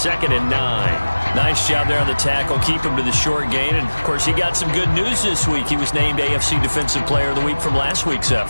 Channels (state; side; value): inverted; both; correlation -1.00